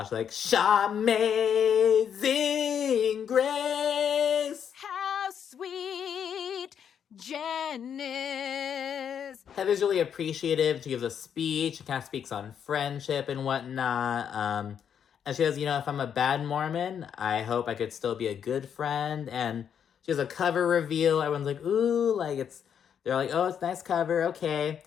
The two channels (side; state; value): right; quieter; 8.2 dB